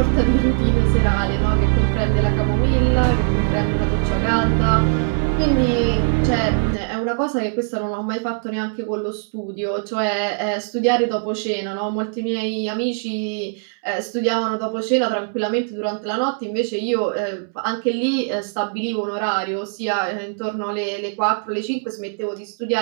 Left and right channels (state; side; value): silent; left; 65 dB below the other